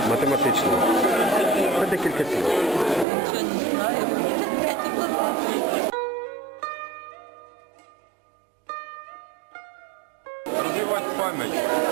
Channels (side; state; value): left; drops out; at 3.1 s